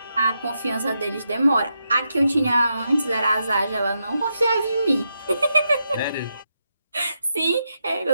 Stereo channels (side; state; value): both; inverted; correlation -0.84